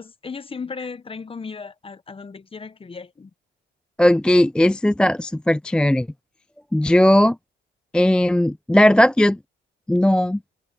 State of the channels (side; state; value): both; normal; correlation 0.97